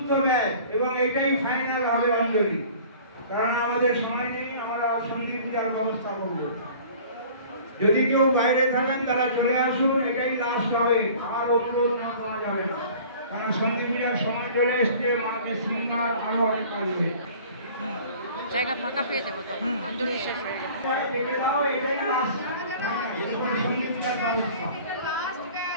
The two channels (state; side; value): inverted; both; correlation -0.47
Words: ব্যাচ এবং এটাই ফাইনাল হবে অঞ্জলি, কারণ আমাদের সময় নেই। আমরা সন্ধি পূজার ব্যবস্থা করব। যদি কেউ বাইরে থাকেন তারা চলে আসুন, এটাই লাস্ট হবে। আর অনুরোধ না করা যাবে না, কারণ সন্ধি পূজার সময় চলে এসছে। মাকে শৃঙ্গার আরো অনেক কাজ নেই, জায়গা ফাঁকা পেয়ে যাবো তখন অঞ্জলি শেষ হয়ে যাবে। এটাই লাস্ট সন্ধি পূজার ব্যবস্থা,